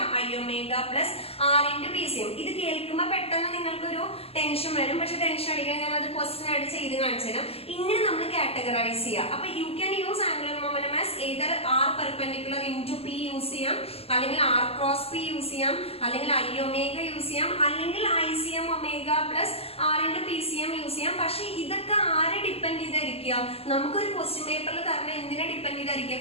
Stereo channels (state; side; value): late; right; 0.28 ms